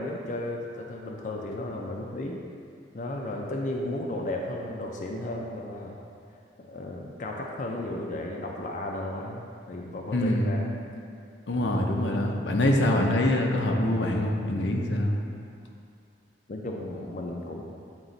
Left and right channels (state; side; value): normal; both; correlation 0.64